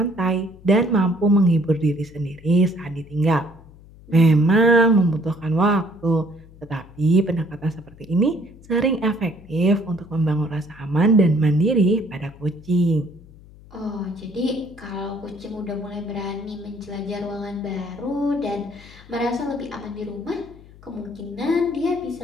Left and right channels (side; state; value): left; noise; hum, 22 dB below the sound